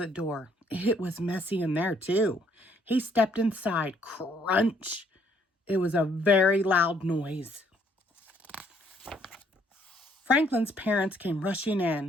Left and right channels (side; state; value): both; normal; correlation 0.67